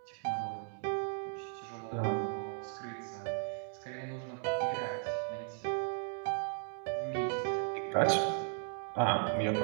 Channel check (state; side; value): silent; left; 54 dB below the other